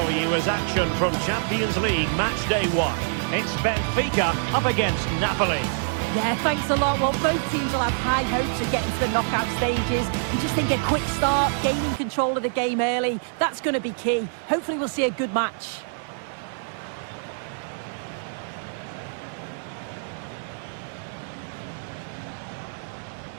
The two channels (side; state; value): left; silent; 60 dB below the other